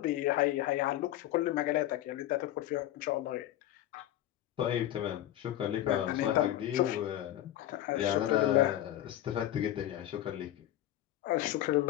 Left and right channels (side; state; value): right; quieter; 13.2 dB